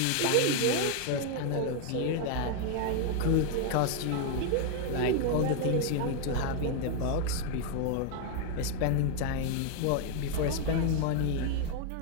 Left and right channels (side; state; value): both; different; correlation 0.01